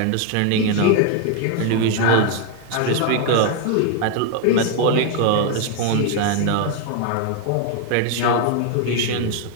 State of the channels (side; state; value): both; different; correlation 0.00